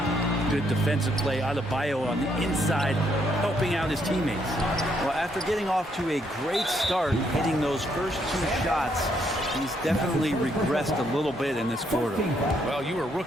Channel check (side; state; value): both; normal; correlation 0.73